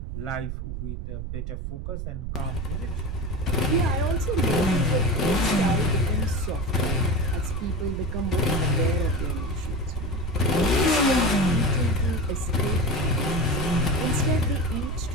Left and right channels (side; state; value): right; noise; rumble, 5 dB below the sound